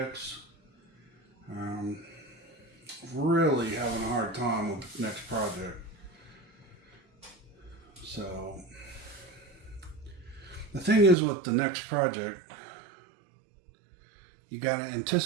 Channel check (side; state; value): left; drops out; at 11.2 s